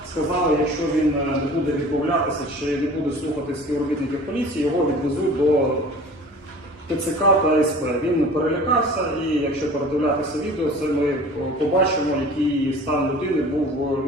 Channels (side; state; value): both; normal; correlation 0.43